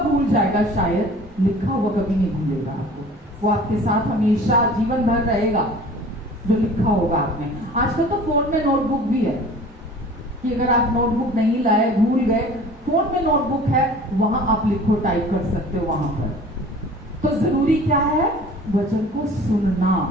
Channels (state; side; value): normal; both; correlation 0.45